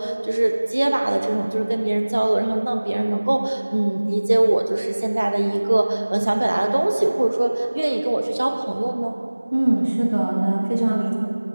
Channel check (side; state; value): both; inverted; correlation -1.00